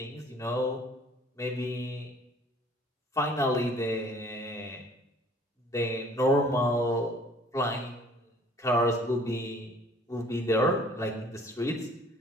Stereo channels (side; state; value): both; normal; correlation 0.54